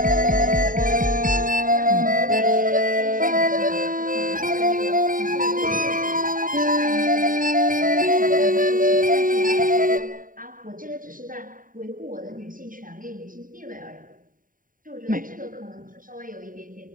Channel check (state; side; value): late; left; 0.40 ms